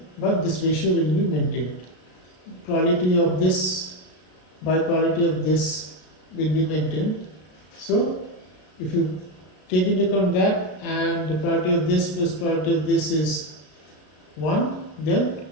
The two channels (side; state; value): right; late; 34 ms